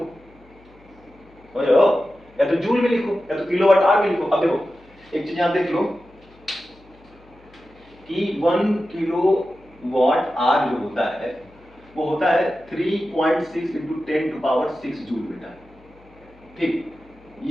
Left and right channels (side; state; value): left; noise; hum, 27 dB below the sound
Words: समझ रहे हो, या तो जूल में लिखो या तो किलोवाट आवर में लिखो। अब देखो एक चीज यहां देख लो कि 1 किलोवाट आवर जो होता है वो होता है 3.6 इंटू 10 टू पावर 6 जूल बेटा, ठीक,